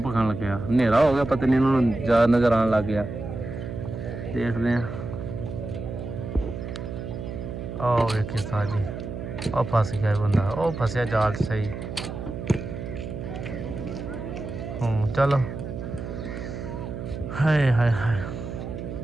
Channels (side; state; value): right; noise; hum, 7 dB below the sound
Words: खान लग गया। हनेरा हो गया, पता नहीं इन्होंने ज़्यादा नज़र आने लग गया। देखते हैं। ओ वेखे उस्ताद जी, ओ फस गया बंदा। ओ फसया जाल सही। चलो हाय हाय हाय।